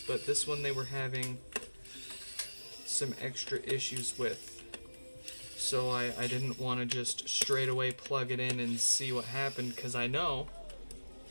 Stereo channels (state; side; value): inverted; both; correlation -1.00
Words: but this one they were having some extra issues with. So I didn't want to just straight away plug it in and see what happened, because I know